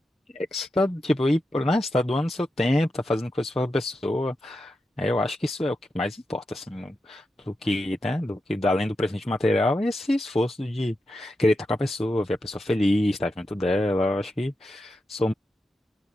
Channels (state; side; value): normal; both; correlation 0.88